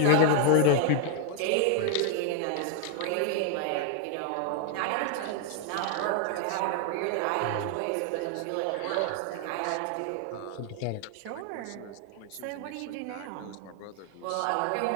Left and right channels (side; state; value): both; different; correlation 0.00